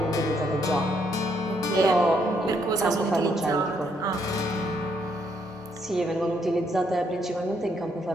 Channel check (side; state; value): both; normal; correlation 0.73